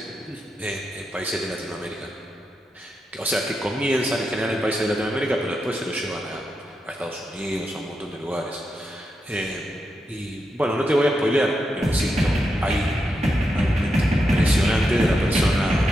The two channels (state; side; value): normal; both; correlation 0.86